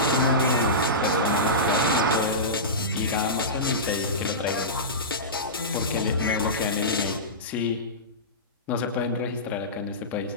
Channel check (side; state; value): both; normal; correlation -0.18